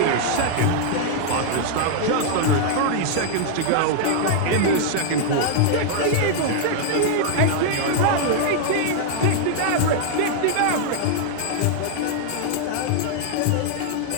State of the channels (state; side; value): different; both; correlation -0.01